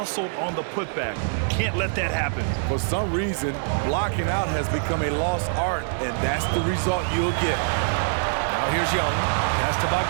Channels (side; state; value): left; silent; 62 dB below the other